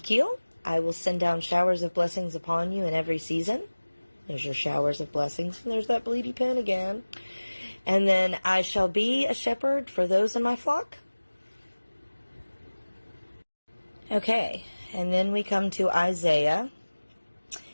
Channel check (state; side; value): inverted; both; correlation -1.00